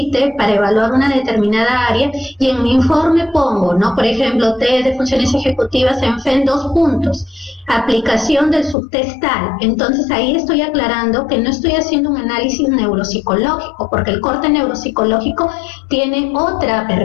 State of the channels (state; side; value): drops out; right; at 8.8 s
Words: para evaluar una determinada área, y en mi informe pongo, ¿no? Por ejemplo, test de funciones ejecutivas ENFEM 2 puntos, aplicación del subtest tal. Entonces ahí estoy aclarando que no estoy haciendo un análisis neuropsicológico, porque el corte neuropsicológico tiene otra